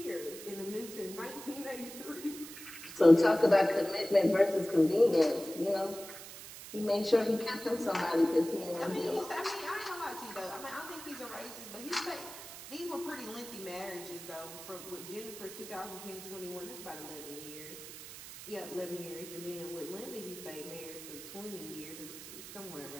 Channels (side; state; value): right; noise; hiss, 13 dB below the sound